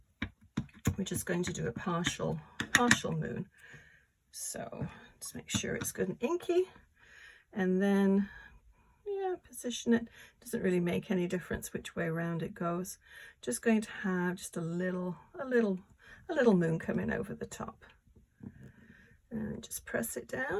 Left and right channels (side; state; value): both; identical; correlation 1.00